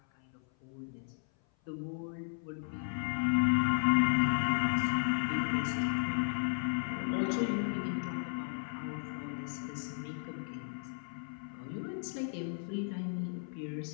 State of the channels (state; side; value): silent; right; 55 dB below the other